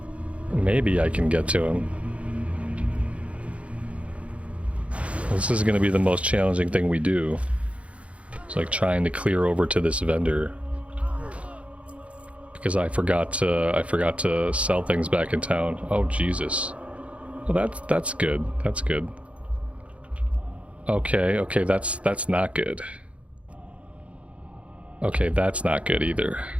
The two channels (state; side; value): late; left; 0.063 ms